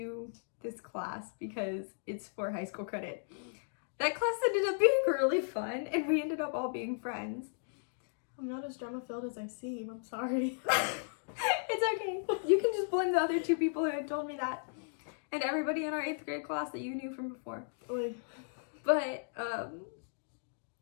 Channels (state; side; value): silent; right; digital silence